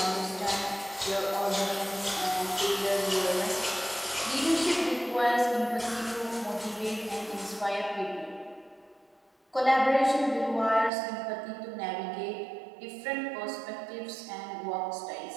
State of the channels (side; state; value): left; drops out; at 10.9 s